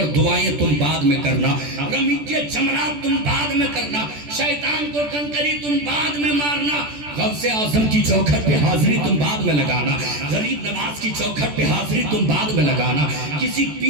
دعائیں تم بعد میں کرنا، رمی کے جمرات تم بعد میں کرنا، شیطان کو کنکری تم بعد میں مارنا، غوث اعظم کی چوکھٹ پہ حاضری تم بعد میں لگانا، غریب نواز کی چوکھٹ پہ حاضری تم بعد میں لگانا، کسی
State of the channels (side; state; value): left; late; 14 ms